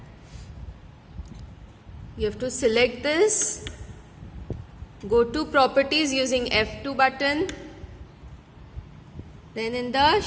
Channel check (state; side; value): identical; both; correlation 1.00